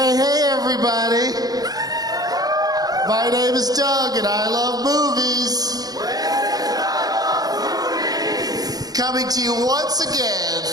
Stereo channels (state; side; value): late; left; 0.19 ms